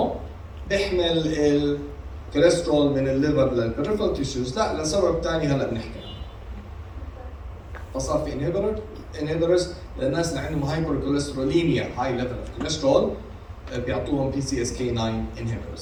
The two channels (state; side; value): identical; both; correlation 1.00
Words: بيحمل الكوليسترول من الليفر للبريفرال تيشوز لا لسبب ثاني هلا بنحكي فصار في inhibitors للناس اللي عندهم هايبر كوليستروليميا هاي ليفل اوف كوليسترول بيعطوهم PCSK9